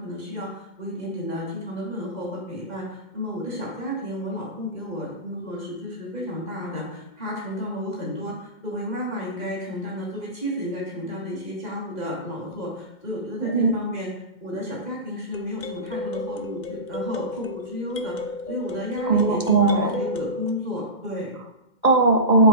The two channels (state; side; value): late; right; 2.1 ms